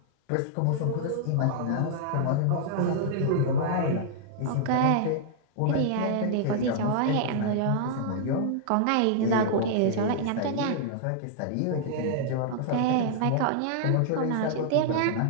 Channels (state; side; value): different; both; correlation -0.01